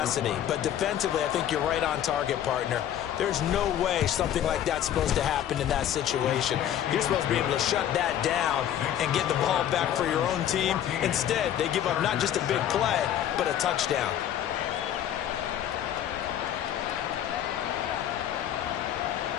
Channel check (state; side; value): quieter; right; 10.8 dB